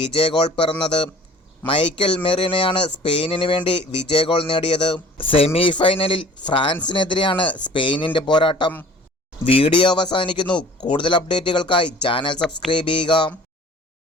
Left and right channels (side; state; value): both; normal; correlation 0.48